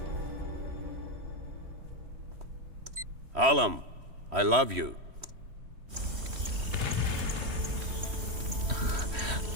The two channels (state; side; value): late; left; 3.1 ms